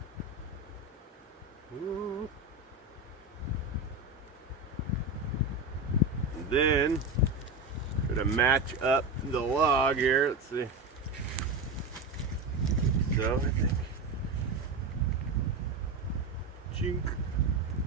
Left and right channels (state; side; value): quieter; left; 3.2 dB